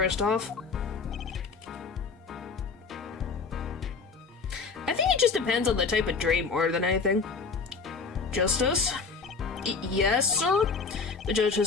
I think it just depends on the type of dream more than anything. Justice? Yes, sir? The judge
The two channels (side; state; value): right; quieter; 4.9 dB